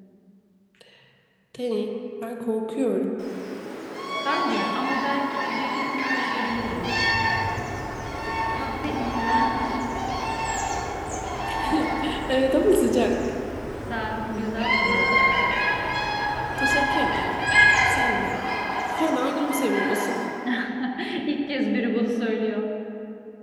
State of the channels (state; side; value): identical; both; correlation 1.00